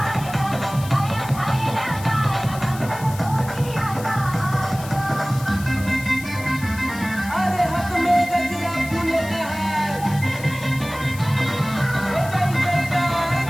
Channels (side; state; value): left; noise; hiss, 15 dB below the sound